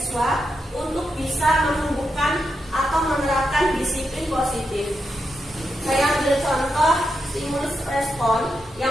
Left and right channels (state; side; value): normal; both; correlation 0.85